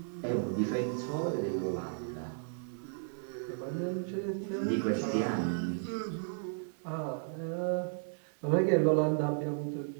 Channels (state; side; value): silent; left; digital silence